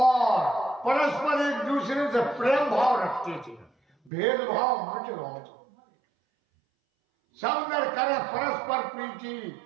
परस्पर एक दूसरे से प्रेम भाव रखते थे, भेदभाव मिट रहा था। सब नर करे परस्पर प्रीति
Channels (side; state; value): left; drops out; at 4.1 s